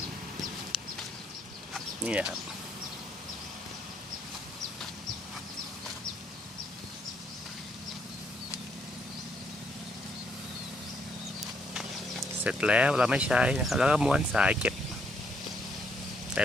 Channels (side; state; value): both; normal; correlation 0.72